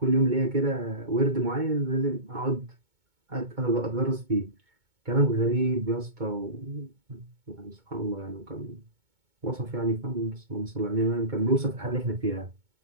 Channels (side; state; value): left; late; 2.2 ms